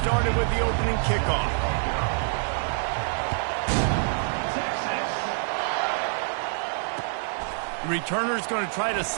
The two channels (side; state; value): left; silent; digital silence